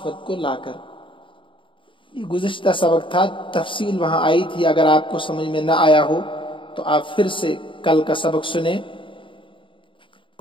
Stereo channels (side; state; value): right; late; 0.25 ms